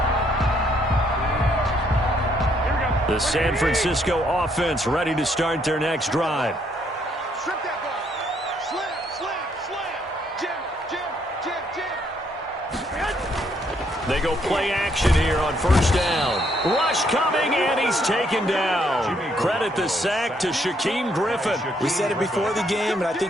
The San Francisco offense ready to start their next drive. They go play action here on first down. Rush coming, and he's taken down. Credit the sack to Shaquem Griffin. We said it before the game, and I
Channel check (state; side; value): normal; both; correlation 0.70